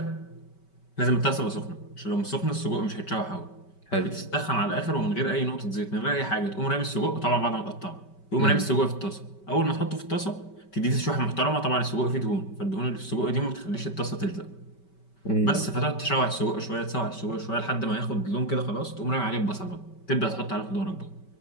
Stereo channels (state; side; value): late; right; 5.2 ms